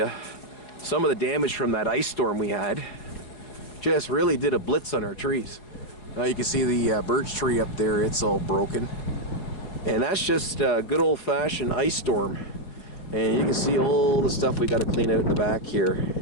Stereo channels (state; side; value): late; right; 4.7 ms